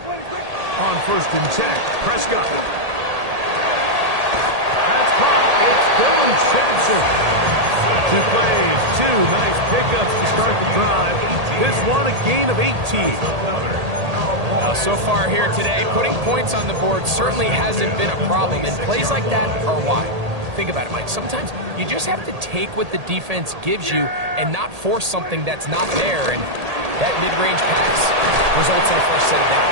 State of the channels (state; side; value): late; left; 1.8 ms